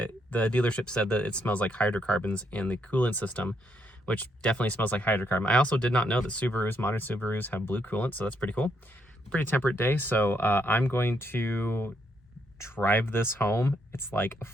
dealership said that it smells like hydrocarbons in the coolant system, which definitely smells like hydrocarbon. I also did not know that modern Subarus have blue coolant, so that's pretty cool. Pretty temperate day, so I'm going to drive this home. It's like a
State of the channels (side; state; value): both; normal; correlation 0.75